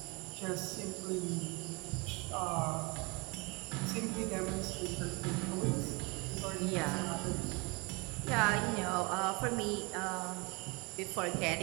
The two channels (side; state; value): left; quieter; 28.6 dB